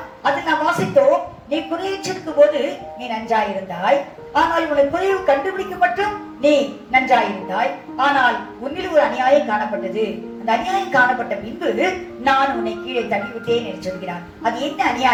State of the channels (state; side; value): identical; both; correlation 1.00